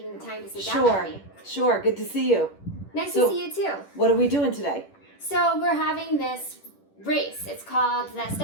the time to sit down with me. Sure. Good to see you. Nice to see you too. What are we doing today? So we're having this race. It's called the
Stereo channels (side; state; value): right; late; 10 ms